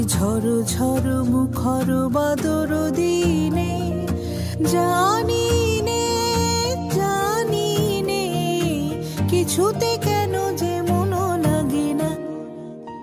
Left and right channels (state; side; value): identical; both; correlation 1.00